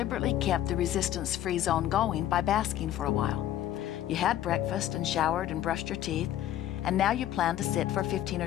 kept the resistance-free zone going by basking for a while. You had breakfast and showered and brushed your teeth, and now you plan to sit for 15 or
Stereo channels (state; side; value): quieter; right; 12.3 dB